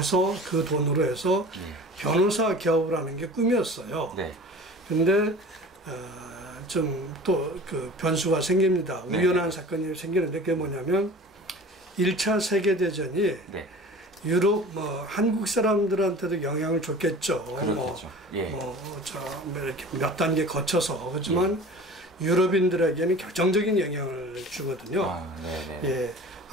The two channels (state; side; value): normal; both; correlation 0.40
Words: 그 돈으로 해서 변호사 개업을 하는 게 꿈이었어요. 근데 좀 또 그 변수가 생깁니다. 우연한 사건이 생기는데 그게 뭐냐면 1차 세계대전이 유럽 한국 사람들한테도 영향을 줬겠죠. 이렇게 몇 단계 거쳐서 그렇지만 유럽인들에게는 결정적인 영향을 주거든요.